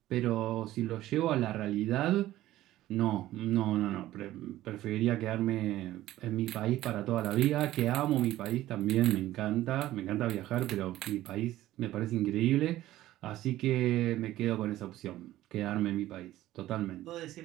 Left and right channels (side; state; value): left; quieter; 14.9 dB